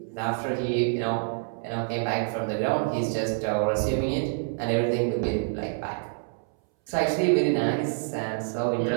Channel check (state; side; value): silent; left; 60 dB below the other